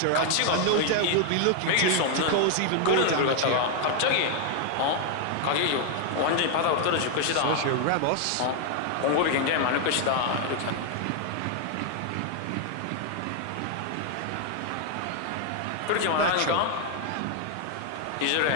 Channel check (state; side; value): different; both; correlation 0.00